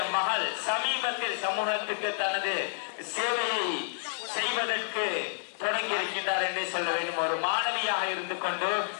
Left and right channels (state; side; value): silent; right; 58 dB below the other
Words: மகள் சமீபத்தில் சமூகத்துக்கு தனது சேவையை செய்வதற்கு தொடங்கி இருக்கின்றார் என்று சொல்ல வேண்டும். ஒரு மாணவியாக இருந்து கொண்டு